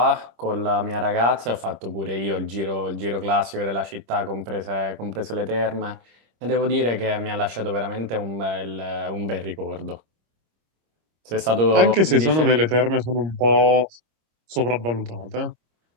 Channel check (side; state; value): left; late; 26 ms